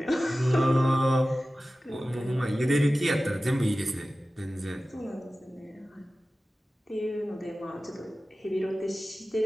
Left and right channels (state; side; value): normal; both; correlation 0.95